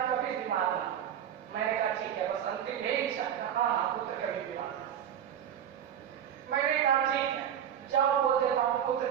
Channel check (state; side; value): quieter; left; 9.5 dB